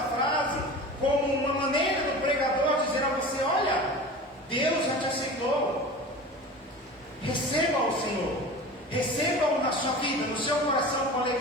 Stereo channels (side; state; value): both; normal; correlation 0.35